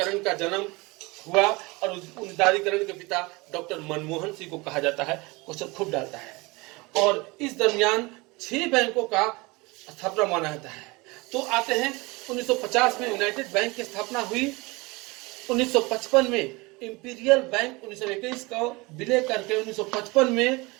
का जन्म हुआ और उदारीकरण के पिता डॉक्टर मनमोहन सिंह को कहा जाता है। क्वेश्चन खूब डालता है। और इस दरमियान 6 बैंकों का स्थापना माना जाता है। तो आते हैं 1950 में यूनाइटेड बैंक की स्थापना हुई। 1955 में इंपीरियल बैंक 1921 का विलय करके 1955 में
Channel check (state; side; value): quieter; left; 24.5 dB